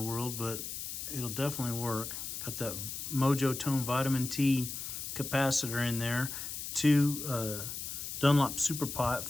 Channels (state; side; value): noise; left; hiss, 6 dB below the sound